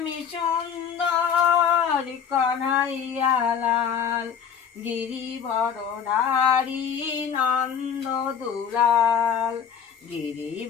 সুন্দর কনহাইয়া লাল গিরিবরধারী নন্দ দুলাল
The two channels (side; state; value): right; quieter; 7.6 dB